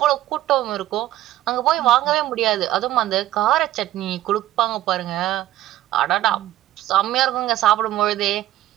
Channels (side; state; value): left; quieter; 14.1 dB